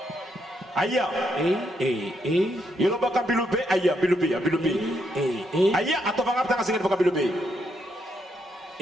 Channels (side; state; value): both; normal; correlation 0.78